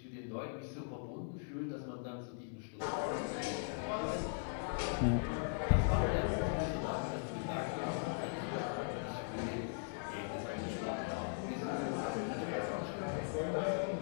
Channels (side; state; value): right; silent; digital silence